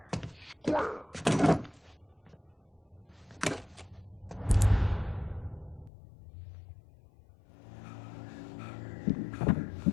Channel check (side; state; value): right; drops out; at 5.9 s